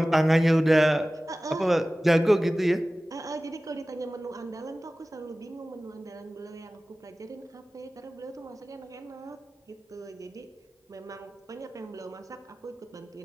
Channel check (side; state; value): both; normal; correlation 0.97